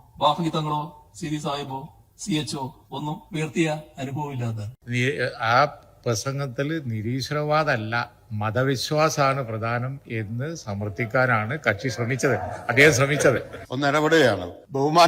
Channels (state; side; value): identical; both; correlation 1.00